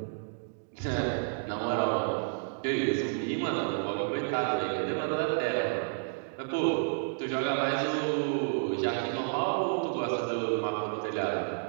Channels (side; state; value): left; silent; digital silence